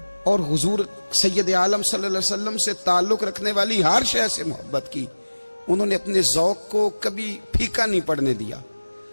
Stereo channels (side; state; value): both; inverted; correlation -1.00